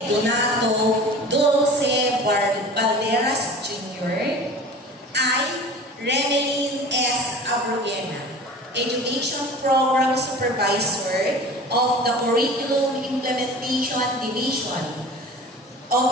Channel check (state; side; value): normal; both; correlation 0.39